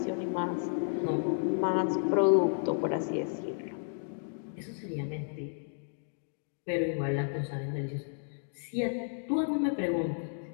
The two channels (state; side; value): silent; right; digital silence